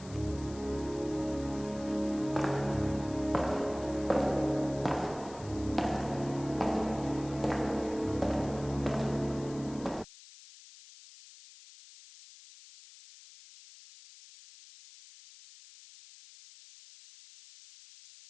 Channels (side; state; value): left; noise; hiss, 19 dB below the sound